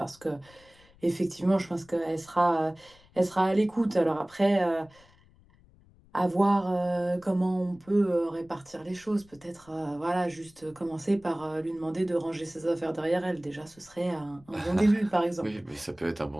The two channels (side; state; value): left; noise; rumble, 28 dB below the sound